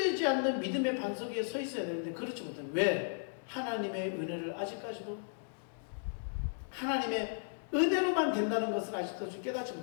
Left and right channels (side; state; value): right; silent; digital silence